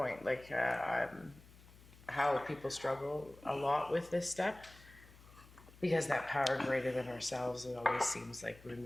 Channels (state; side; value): noise; left; hum, 22 dB below the sound